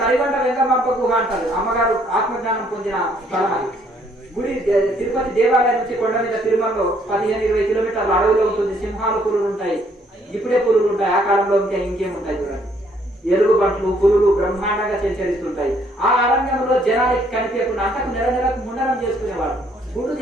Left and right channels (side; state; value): both; normal; correlation 0.66